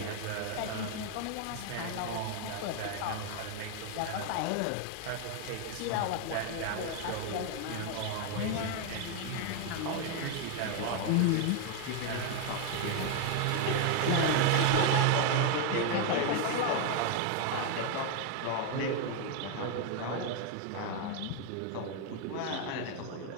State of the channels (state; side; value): different; both; correlation 0.01